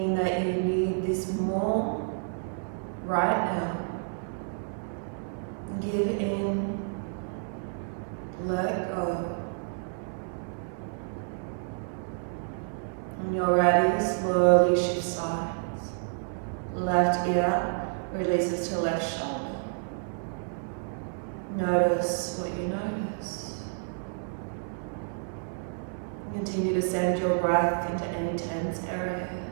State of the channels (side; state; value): left; silent; 57 dB below the other